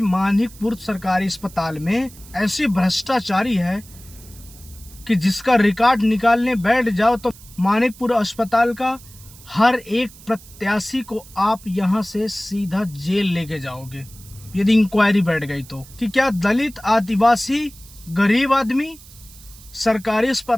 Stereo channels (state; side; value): noise; right; hiss, 21 dB below the sound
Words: मानिकपुर सरकारी अस्पताल में ऐसी भ्रष्टाचारी है कि जिसका रिकॉर्ड निकालने बैठ जाओ तो मानिकपुर अस्पताल का हर एक प्रत्याशी को आप यहां से सीधा जेल लेके जाओगे यदि इंक्वायरी बैठ गई तो। कि क्या दलित, आदिवासी, गरीब आदमी सरकारी